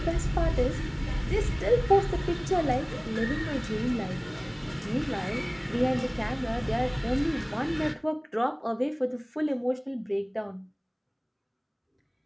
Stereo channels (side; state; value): both; identical; correlation 1.00